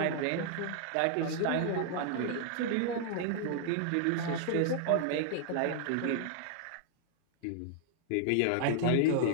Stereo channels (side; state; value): both; different; correlation -0.01